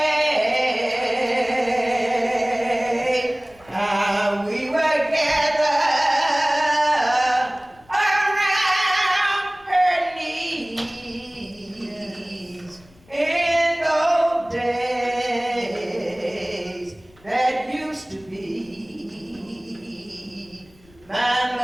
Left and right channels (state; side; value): noise; left; rumble, 29 dB below the sound